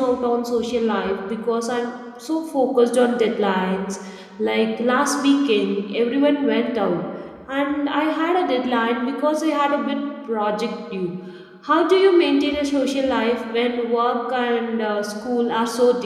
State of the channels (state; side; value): identical; both; correlation 1.00